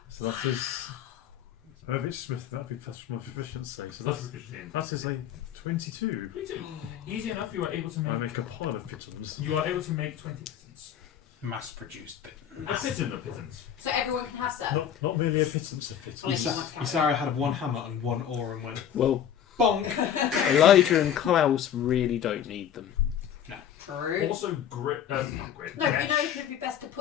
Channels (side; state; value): right; quieter; 9.3 dB